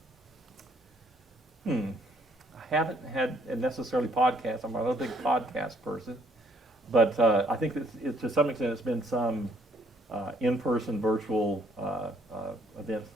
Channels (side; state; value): both; normal; correlation 0.66